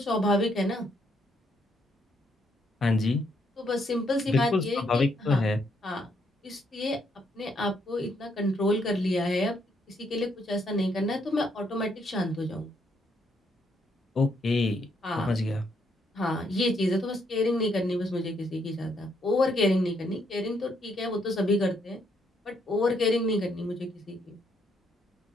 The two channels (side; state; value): both; normal; correlation 0.73